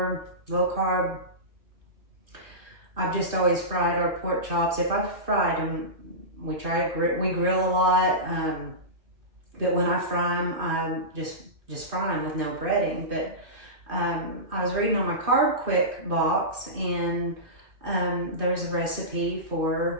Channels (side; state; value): left; late; 2.5 ms